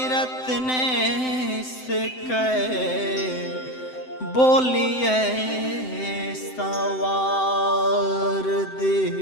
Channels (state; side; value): late; right; 7.8 ms